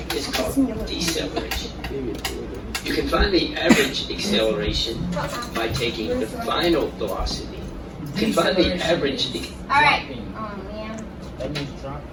is called deceleration. You can find the average acceleration by taking the final velocity. You can find the average. All right. Oh, man.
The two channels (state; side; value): identical; both; correlation 1.00